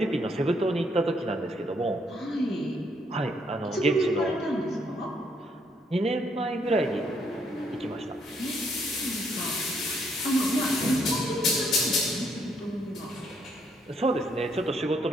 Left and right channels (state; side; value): normal; both; correlation 0.71